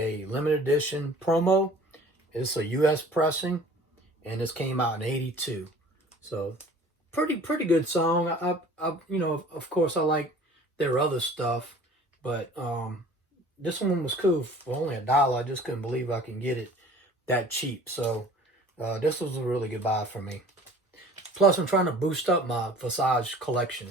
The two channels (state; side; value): normal; both; correlation 0.48